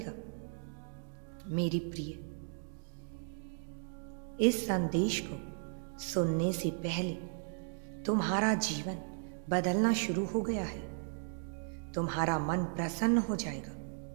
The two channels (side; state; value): left; silent; digital silence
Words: मेरी प्रिय, इस संदेश को सुनने से पहले तुम्हारा जीवन बदलना शुरू हो गया है। तुम्हारा मन प्रसन्न हो जाएगा,